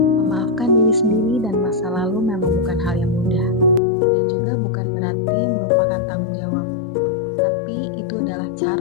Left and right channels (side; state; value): right; drops out; at 3.8 s